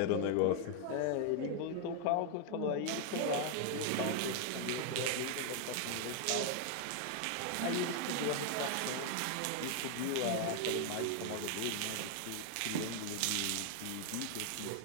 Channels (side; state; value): both; different; correlation 0.00